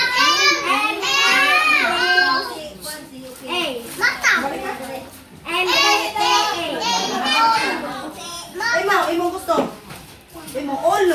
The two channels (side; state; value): both; identical; correlation 1.00